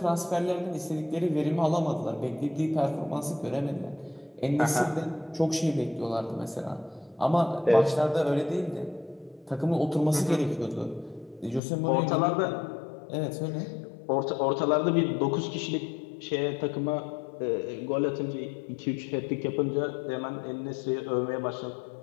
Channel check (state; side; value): drops out; right; at 11.6 s